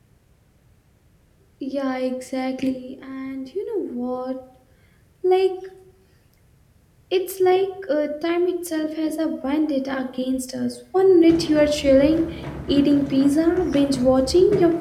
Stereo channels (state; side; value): identical; both; correlation 1.00